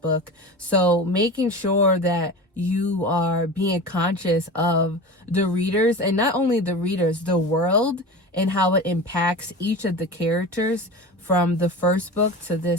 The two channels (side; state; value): both; normal; correlation 0.31